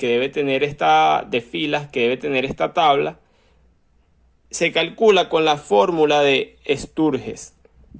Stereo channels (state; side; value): identical; both; correlation 1.00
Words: debe tener de filas que debe tener esta tabla, se calcula con la fórmula de Sturges,